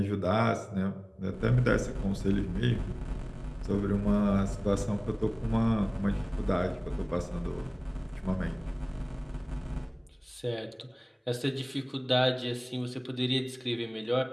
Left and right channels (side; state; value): both; identical; correlation 1.00